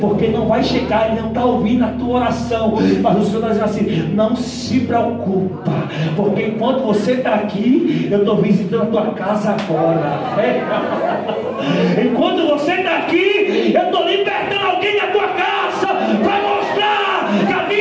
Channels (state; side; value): identical; both; correlation 1.00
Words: não vai chegar, ele não está ouvindo a tua oração. Mas o Senhor está dizendo assim, não se preocupa, porque enquanto você está aqui, eu estou visitando a tua casa agora. Enquanto você está aqui, eu estou libertando alguém da tua casa, para mostrar que a